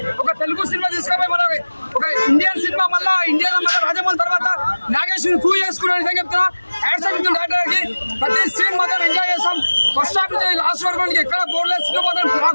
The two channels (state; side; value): inverted; both; correlation -1.00